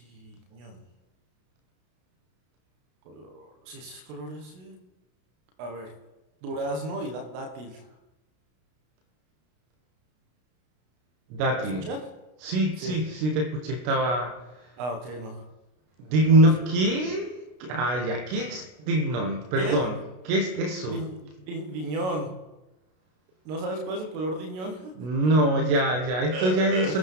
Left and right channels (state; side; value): late; left; 33 ms